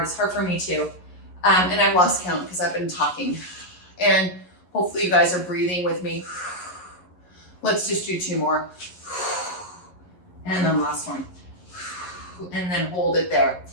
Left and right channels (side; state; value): right; late; 11 ms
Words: for me too. And I've lost count because I've been talking. And hopefully you guys are breathing with me. Let's just do 2 more. And then last one. And then hold it there.